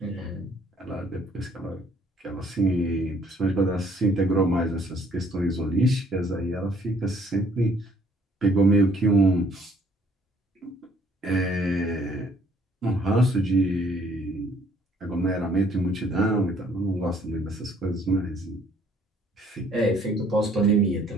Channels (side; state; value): both; normal; correlation 0.62